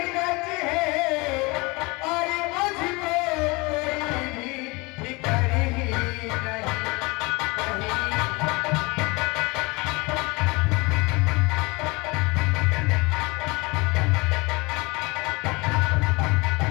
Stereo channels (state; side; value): quieter; right; 25.7 dB